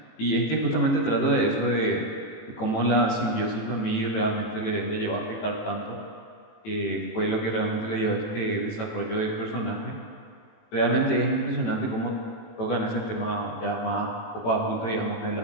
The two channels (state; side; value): late; right; 18 ms